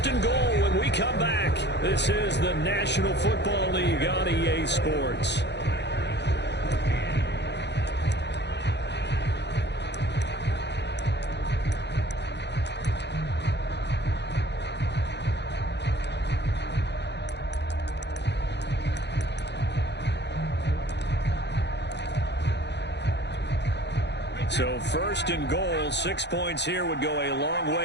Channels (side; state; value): right; late; 0.50 ms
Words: and goal when we come back. This is the National Football League on EA Sports. So 1st and goal, 6 points here would go a long